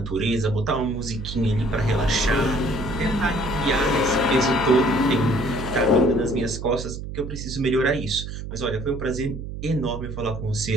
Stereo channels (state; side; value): noise; right; hum, 8 dB below the sound